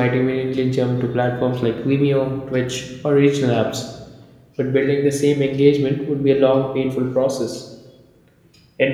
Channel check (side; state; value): both; identical; correlation 1.00